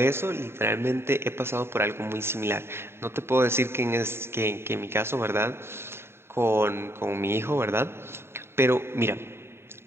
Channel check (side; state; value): left; late; 0.12 ms